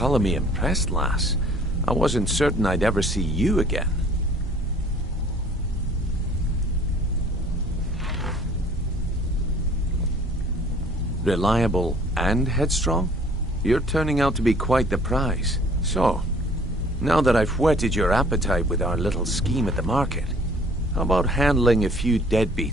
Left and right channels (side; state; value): both; normal; correlation 0.54